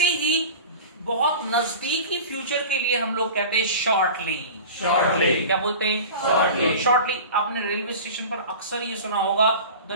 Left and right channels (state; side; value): inverted; both; correlation -0.35